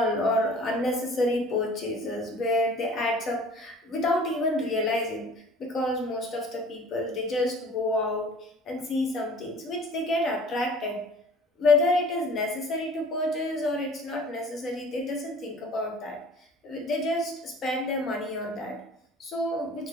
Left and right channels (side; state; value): both; normal; correlation 0.47